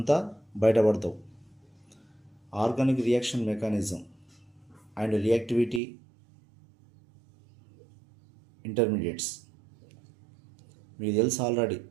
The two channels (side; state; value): left; drops out; at 5.8 s